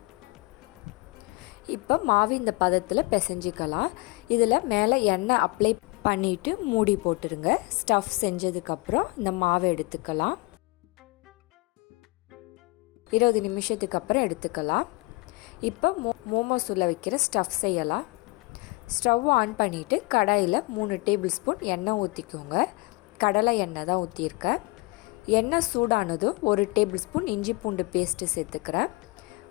இப்போ மாவு இந்த பதத்தில் பிசைஞ்சிக்கலாம். இதில் மேலே எண்ணெய் அப்ளை பண்ணிவிட்டு மூடி போட்டுருங்க. ஸ்டஃப் செஞ்சதுக்கப்புறம் இந்த மாவை எடுத்துக்கலாம். 20 நிமிஷத்துக்கு அப்புறம் எடுத்துக்கலாம். இப்போ மோமோஸ் உள்ள வைக்கிற ஸ்டஃப் செய்யலாம். ஸ்டவ் ஆன் பண்ணிவிட்டு கடாயில் 3 டேபிள் ஸ்பூன் எண்ணெய் ஊற்றிக்கோங்க. கடலை எண்ணெய் தான் ஊற்றியிருக்கேன். எண்ணெய் சூடானதும் 1 டேபிள் ஸ்பூன் இஞ்சி பூண்டு பேஸ்ட்டு சேர்த்துக்கிறேன்.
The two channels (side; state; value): right; quieter; 24.7 dB